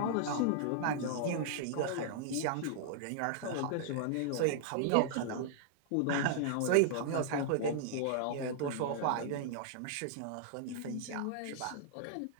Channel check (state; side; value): different; both; correlation -0.01